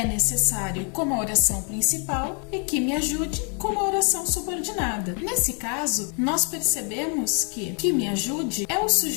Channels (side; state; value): right; quieter; 39.2 dB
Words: necessário como a oração principal e que me ajude como a oração subordinada. Nesse caso, nós percebemos que me ajude é o